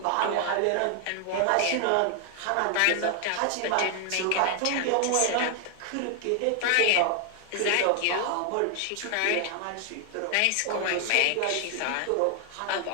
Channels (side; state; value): both; different; correlation 0.00